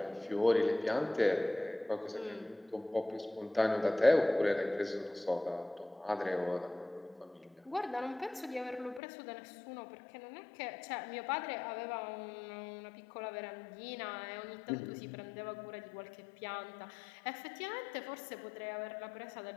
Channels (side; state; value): right; drops out; at 9.0 s